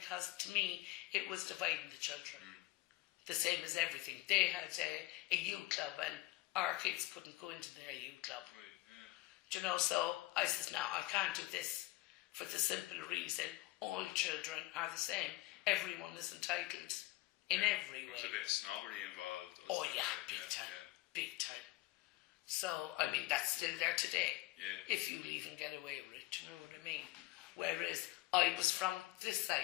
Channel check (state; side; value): quieter; right; 18.9 dB